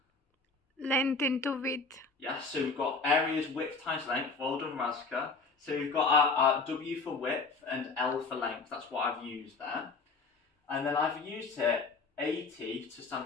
Length into width. Yes, so we've got area is width times length, well done Razka. So we've got our W for width and L for length, that's what I've used there. And then I've used here AT to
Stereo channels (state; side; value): quieter; right; 4.2 dB